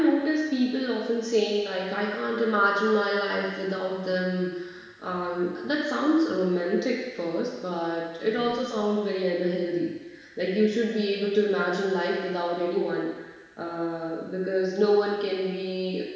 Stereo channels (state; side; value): identical; both; correlation 1.00